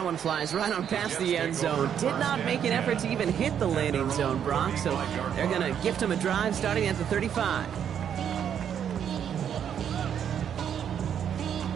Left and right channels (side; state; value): left; quieter; 8.8 dB